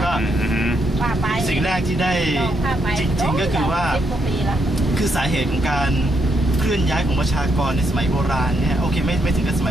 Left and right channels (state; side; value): normal; both; correlation 0.77